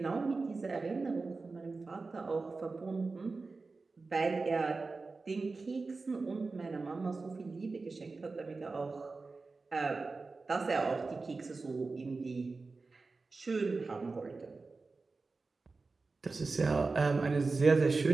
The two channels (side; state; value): left; quieter; 3.9 dB